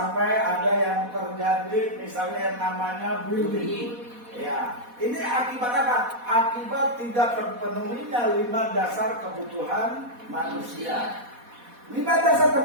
ada yang terjadi misalnya yang namanya bullying. Ya, ini akibat apa? Akibat tidak terpenuhinya 5 dasar kebutuhan manusia. 5 dasar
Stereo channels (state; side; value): late; left; 4.1 ms